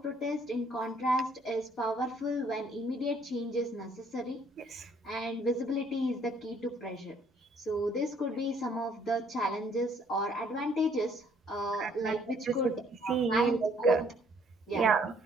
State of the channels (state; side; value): normal; both; correlation 0.63